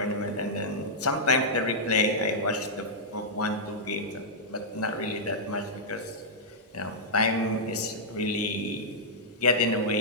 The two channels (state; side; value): normal; both; correlation -0.10